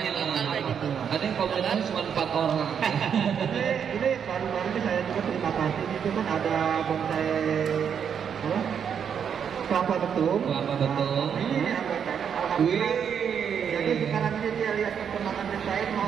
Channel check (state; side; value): quieter; left; 7.7 dB